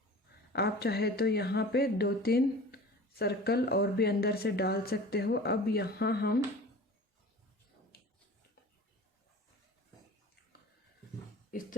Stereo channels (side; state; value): both; normal; correlation 0.40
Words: आप चाहे तो यहाँ पे 2-3 सर्कल और भी अंदर से डाल सकते हो। अब यहाँ हम इस